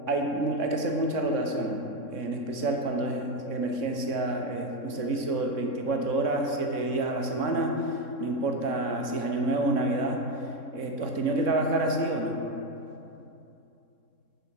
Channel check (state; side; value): late; right; 3.6 ms